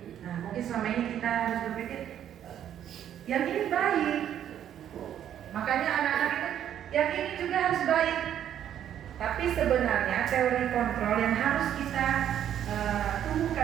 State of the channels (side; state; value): left; quieter; 10.2 dB